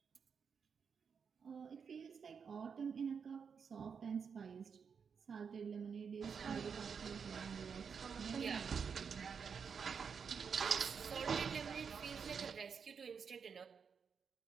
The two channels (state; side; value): quieter; left; 6.3 dB